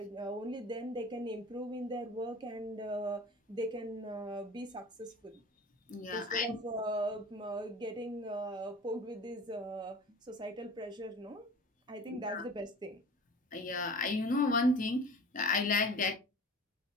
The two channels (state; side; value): normal; both; correlation 0.40